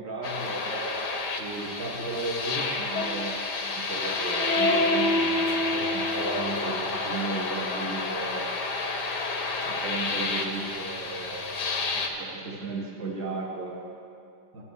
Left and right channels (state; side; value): late; right; 5.0 ms